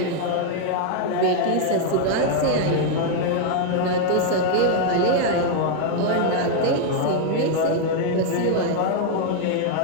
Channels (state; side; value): different; both; correlation 0.00